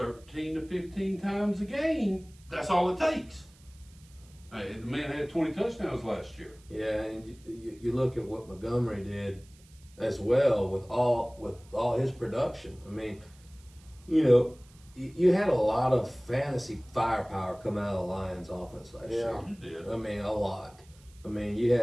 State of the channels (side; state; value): right; noise; hiss, 27 dB below the sound